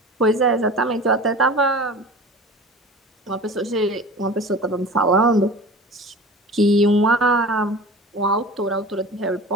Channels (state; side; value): normal; both; correlation 0.37